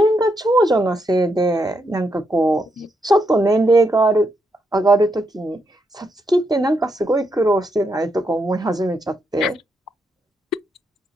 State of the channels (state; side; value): normal; both; correlation 0.80